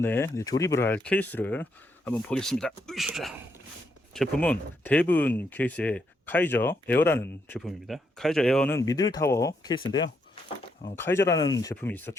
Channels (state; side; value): normal; both; correlation 0.78